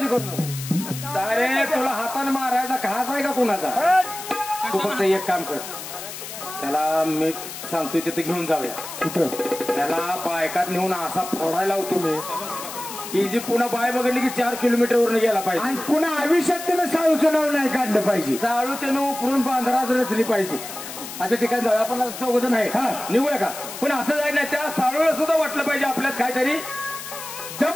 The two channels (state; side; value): noise; left; hiss, 10 dB below the sound